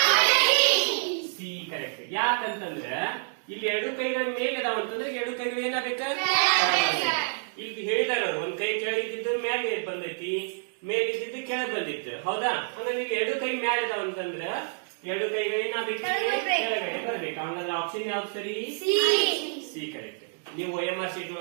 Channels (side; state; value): left; silent; digital silence